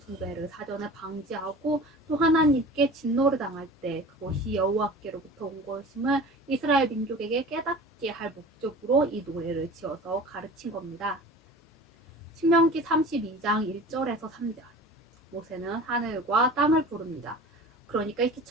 사전에 방지하고 또 하나님께 진노를 당할 때 그것이 여호와께로부터 온 것임을 이스라엘 민족에게 깨닫게 할 목적으로 이 노래를 지어서 가르친 겁니다. 신명기 32장 1절에서 3절 모세는 하늘과 땅을 부릅니다. 그러니까 이렇게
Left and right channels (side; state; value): both; normal; correlation 0.39